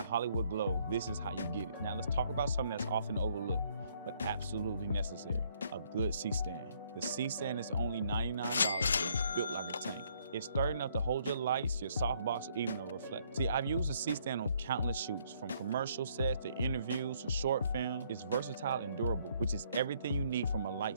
Hollywood glow, this is how you get it. Now let's talk about something that's often overlooked, but absolutely necessary: a good C-stand. The C-stand is only $99 and it's built like a tank. It's sturdy enough to hold your lights, your softbox, or even a reflector. See, I've used a C-stand on countless shoots, from commercial sets to interviews to short film. It's versatile and durable, which is everything you need from a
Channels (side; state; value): both; inverted; correlation -0.67